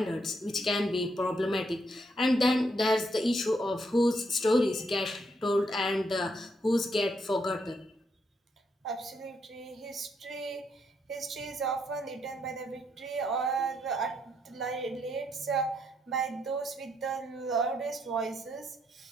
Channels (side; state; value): both; normal; correlation 0.76